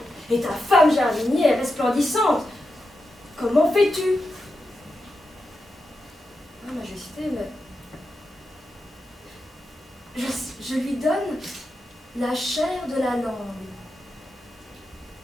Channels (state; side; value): normal; both; correlation 0.88